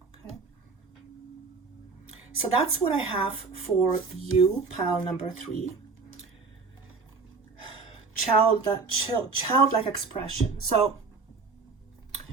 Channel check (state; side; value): quieter; left; 4.5 dB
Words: Okay, so that's what I have for you, pile number 3. Childlike expression. So